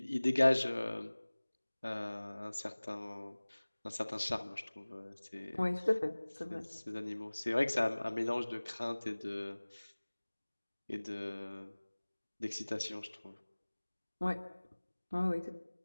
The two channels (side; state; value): both; inverted; correlation -1.00